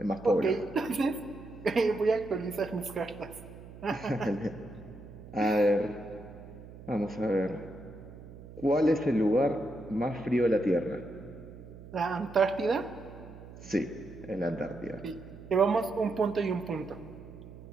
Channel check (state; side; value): noise; right; hum, 16 dB below the sound